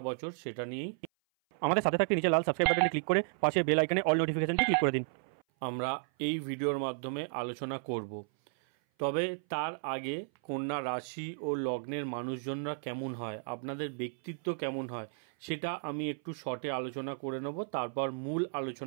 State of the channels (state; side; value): silent; left; 56 dB below the other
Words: বছর সেটা নিয়েই আমাদের সাথে থাকতে নিচে লাল সাবস্ক্রাইব বাটনে ক্লিক করে পাশে বেল আইকনে অল নোটিফিকেশনটি ক্লিক করে দিন। আমরা এই ভিডিওর মাধ্যমে আলোচনা করব। তবে তার আগে কন্যা রাশি ও লগ্নের মানুষজনরা কেমন হয়, আপনাদের ব্যক্তিত্ব কেমন হয়, সেটা আমি একটু শর্টে আলোচনা করে নেব। তারপর মূল